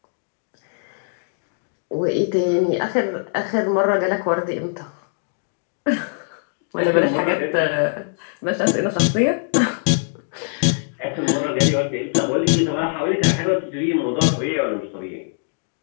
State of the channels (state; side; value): silent; right; digital silence